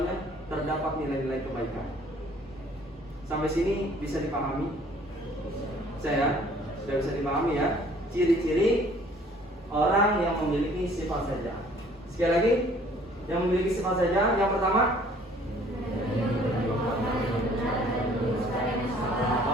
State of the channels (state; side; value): normal; both; correlation 0.56